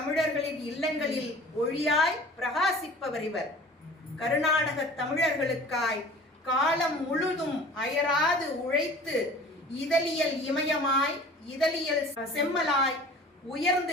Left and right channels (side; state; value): both; normal; correlation 0.44